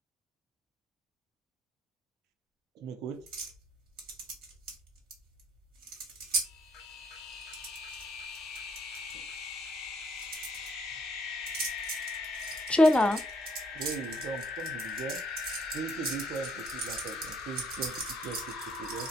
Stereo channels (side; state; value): both; normal; correlation 0.68